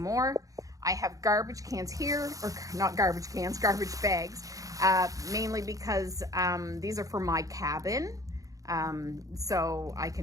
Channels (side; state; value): left; late; 0.17 ms